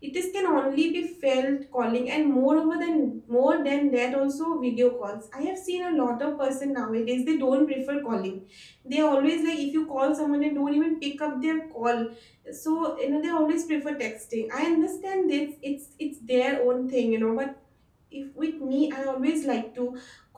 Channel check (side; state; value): both; identical; correlation 1.00